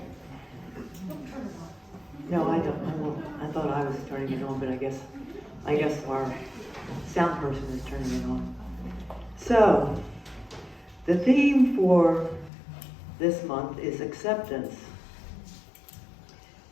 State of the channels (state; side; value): drops out; right; at 12.5 s